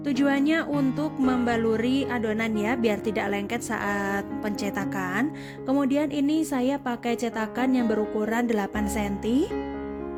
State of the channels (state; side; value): identical; both; correlation 1.00